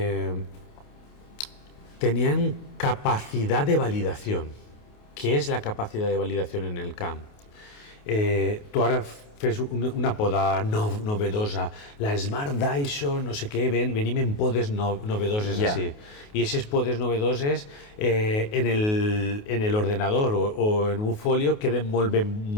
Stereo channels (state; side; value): late; right; 28 ms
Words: tenien capacitat de validació. Què és la capacitat de validació en el camp? Tu ara fes una poda novedosa, la Smart Dyson, no sé què, venim en podes novedoses així. I aquestes podes novedoses en l'ordenador o en un folio queden molt